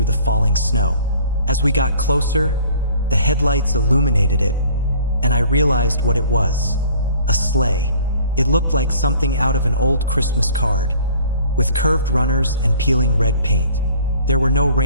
the falling snow. As we got closer, the headlights illuminated it, and I realized what it was: a sleigh. It looked like something out of an old Christmas card, with curved runners and peeling red paint. There were no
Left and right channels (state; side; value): inverted; both; correlation -0.53